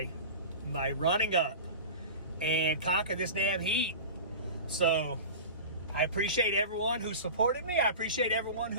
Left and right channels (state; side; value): inverted; both; correlation -0.32